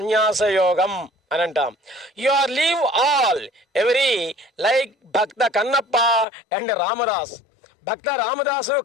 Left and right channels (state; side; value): drops out; right; at 6.2 s